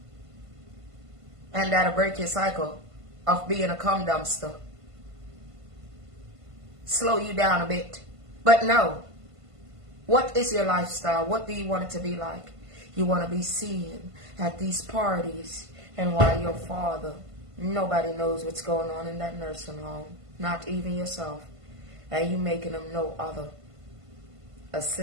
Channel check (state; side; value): late; left; 1.5 ms